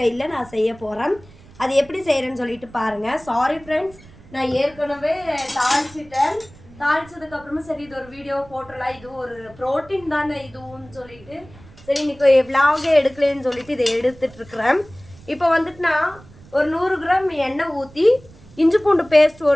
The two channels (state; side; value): noise; right; rumble, 23 dB below the sound